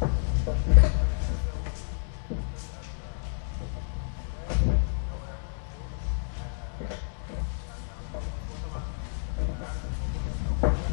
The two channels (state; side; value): silent; right; digital silence